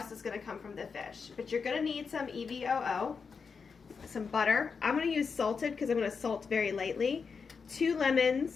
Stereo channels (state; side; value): quieter; right; 5.5 dB